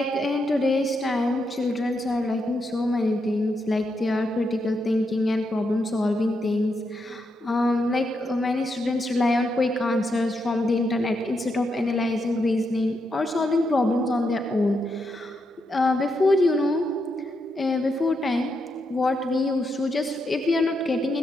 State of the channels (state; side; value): normal; both; correlation 0.82